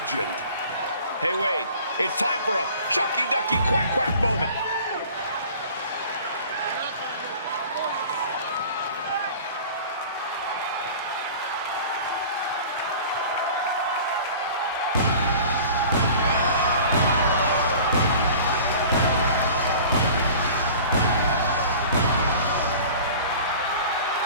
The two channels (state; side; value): inverted; both; correlation -0.43